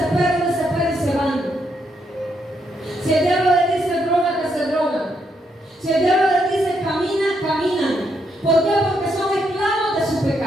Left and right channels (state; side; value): normal; both; correlation 0.77